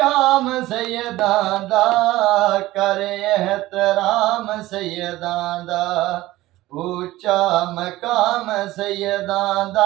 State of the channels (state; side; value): quieter; left; 17.2 dB